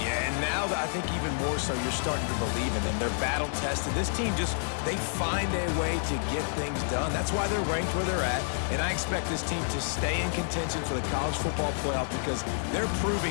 and now I think even more so, you're starting to believe in them. They're battle-tested. This team they find a way to get things done. That's why they're ranked where they're at, and I expect this team to stay in contention for the college football playoff because they're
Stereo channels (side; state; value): right; silent; digital silence